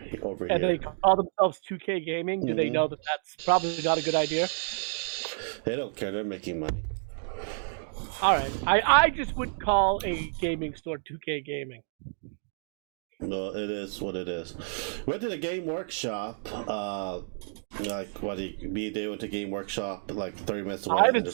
over And here. they call themselves 2K Gaming. Do they know that that's probably not a good idea? They don't care. They're making money. All right. I just would call a gaming store 2K Gaming. No, it is what it is. Went to the game workshop. Like what? Me and Dave went to game workshop like 30 minutes away. I haven't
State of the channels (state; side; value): silent; left; digital silence